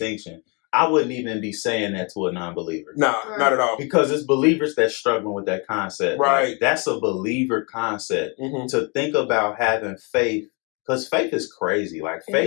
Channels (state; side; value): quieter; right; 32.4 dB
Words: I wouldn't even be saying that to a non-believer. Nah, not at all. Because it's believers that's struggling with that concept. Right. Like, that's a believer concept. To think about having faith, because faith is crazy. Like,